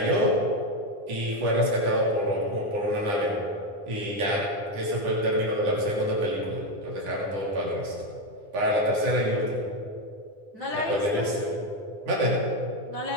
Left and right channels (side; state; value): left; late; 9.8 ms